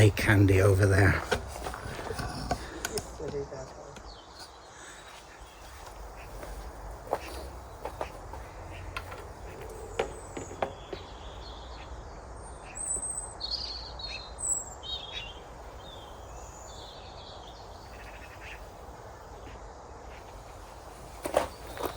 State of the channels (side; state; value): both; identical; correlation 1.00